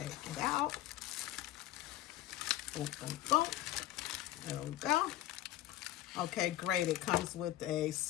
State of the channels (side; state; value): right; quieter; 14.3 dB